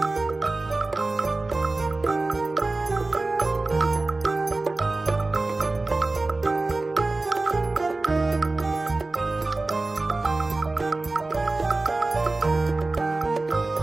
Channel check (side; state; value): left; quieter; 3.2 dB